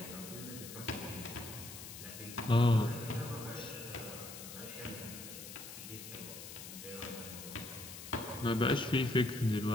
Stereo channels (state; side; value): noise; left; hiss, 11 dB below the sound